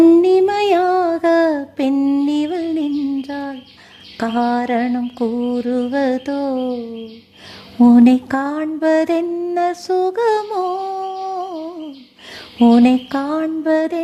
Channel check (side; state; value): both; identical; correlation 1.00